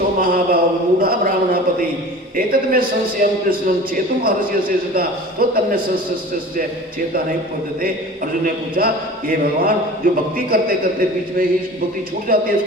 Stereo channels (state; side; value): normal; both; correlation 0.40